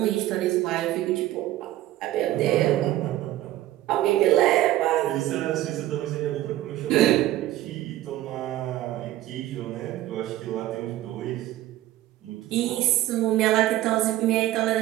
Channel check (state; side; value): quieter; left; 14.6 dB